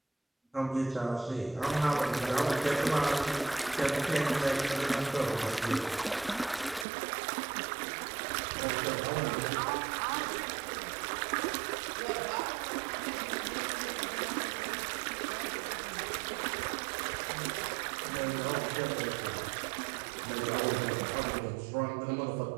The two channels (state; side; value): drops out; left; at 6.9 s